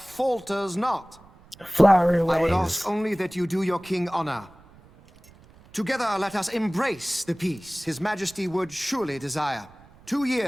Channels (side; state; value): right; noise; rumble, 25 dB below the sound